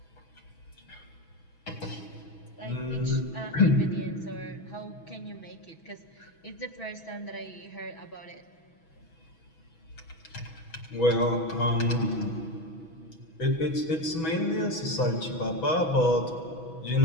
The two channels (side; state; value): right; late; 6.1 ms